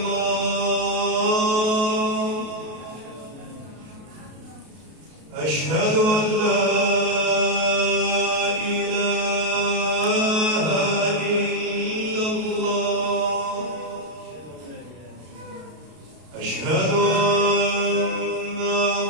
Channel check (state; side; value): late; left; 33 ms